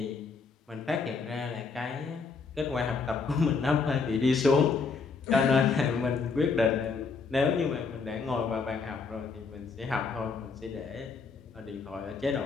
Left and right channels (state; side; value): quieter; right; 4.8 dB